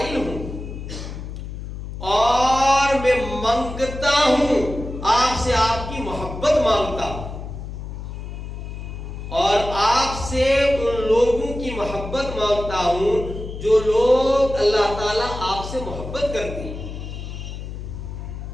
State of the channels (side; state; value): left; noise; hum, 9 dB below the sound